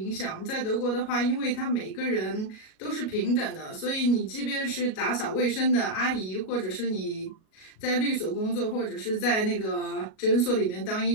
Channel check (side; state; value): right; late; 37 ms